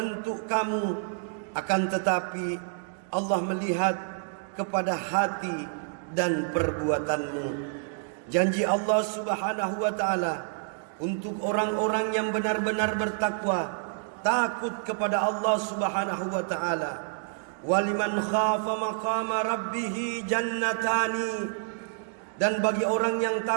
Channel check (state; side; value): silent; left; digital silence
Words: kamu, akan tetapi Allah melihat kepada hati dan perbuatanmu. Janji Allah Subhanahu wa taala untuk orang-orang yang benar-benar bertakwa, takut kepada Allah Subhanahu wa taala. Waliman khafa maqama rabbih jannatani. Dan bagi orang yang